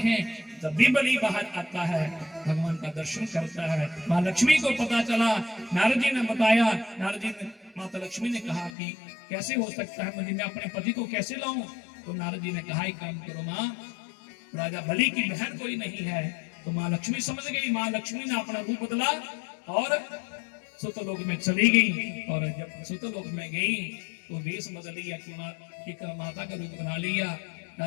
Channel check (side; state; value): right; drops out; at 8.7 s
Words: जब भी बलि बाहर आता है भगवान का दर्शन करता है। माँ लक्ष्मी को पता चला, नारद जी ने बताया, नारद जी ने माता लक्ष्मी ने कहा कि कैसे हो सकता है, मैं अपने पति को कैसे लाऊं? तो नारद जी ने कहा एक काम करो माँ, राजा बलि की बहन कोई नहीं है। तो माँ लक्ष्मी समझ गई, माँ लक्ष्मी ने अपना रूप बदला और सुतलोक में चली गई। और जब सुतलोक में गई तो वेश बदल लिया कि एक माता का रूप बना लिया।